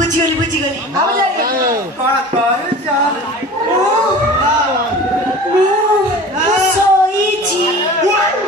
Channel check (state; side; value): normal; both; correlation 0.39